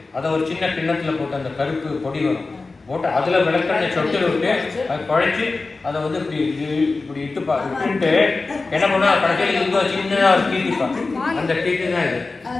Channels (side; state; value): right; quieter; 3.7 dB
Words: அதை ஒரு சின்ன கிண்ணத்தில் போட்டு அந்த கருப்பு பொடி வரும் போட்டு அதில் விளக்கெண்ணை சொட்டு விட்டு அதை குழைச்சி அதை வந்து இப்படி இட்டுட்டு என்ன பண்ணால் கடைசியில் இங்கே சின்னதாக ஒரு கீட்டிப்பாங்க. அந்த கீட்டு தான் இது,